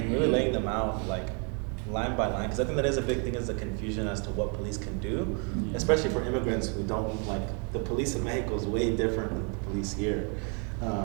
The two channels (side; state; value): left; quieter; 37.7 dB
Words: really laying them out like line by line, because I think that is a big thing, is the confusion as to what police can do, especially for immigrants who don't like the police in Mexico is way different than the police here.